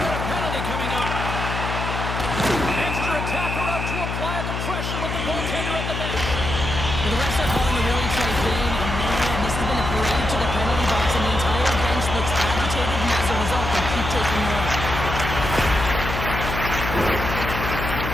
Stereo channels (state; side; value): noise; left; hum, 4 dB below the sound